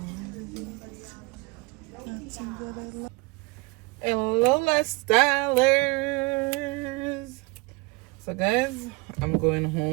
Nothing that I love. Hello, lifestylers. So guys, I'm going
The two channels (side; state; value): left; quieter; 26.5 dB